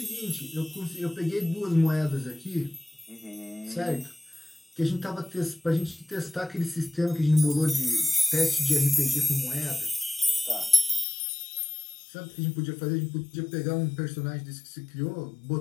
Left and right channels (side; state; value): right; drops out; at 11.1 s